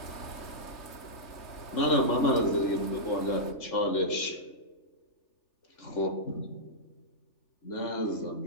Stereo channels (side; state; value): right; late; 3.2 ms